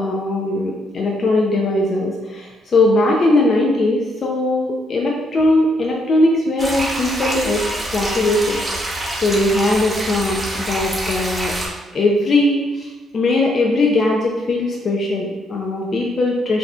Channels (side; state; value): both; normal; correlation 0.74